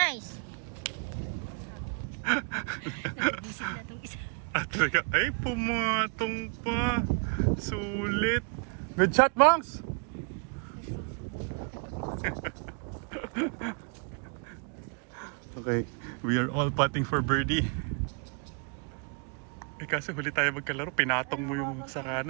Nag-visit na itong isa. At talaga, ay pumatong pa. Sulit. Good shot, Monks! Okay, we are all putting for birdie. Eh kasi huli tayo magkalaro, pinatong mo yung sa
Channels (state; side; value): quieter; left; 36.8 dB